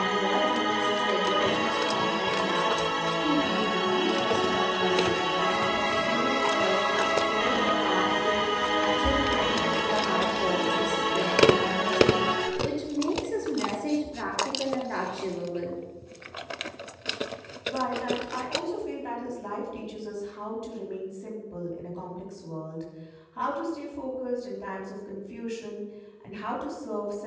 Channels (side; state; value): both; identical; correlation 1.00